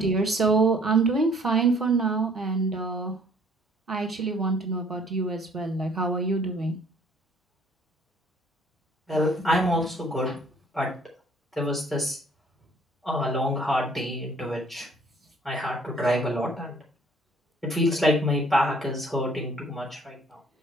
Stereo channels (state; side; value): normal; both; correlation 0.58